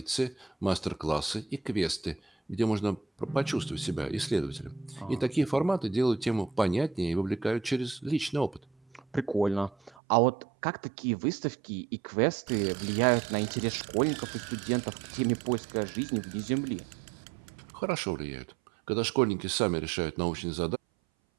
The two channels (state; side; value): drops out; left; at 9.9 s